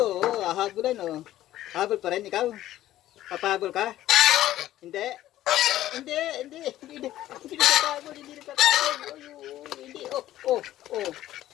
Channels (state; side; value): quieter; right; 13.9 dB